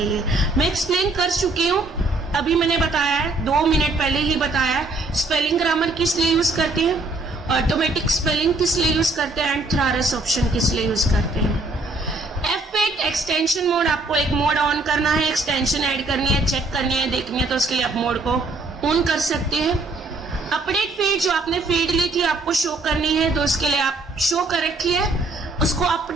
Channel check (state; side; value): quieter; left; 3.1 dB